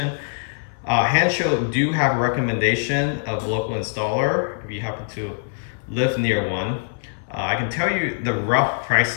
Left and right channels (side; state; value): right; silent; digital silence